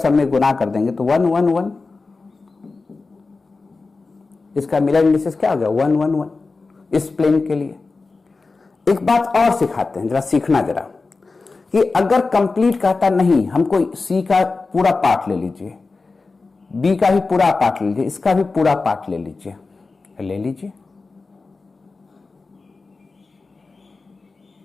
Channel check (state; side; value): quieter; right; 3.9 dB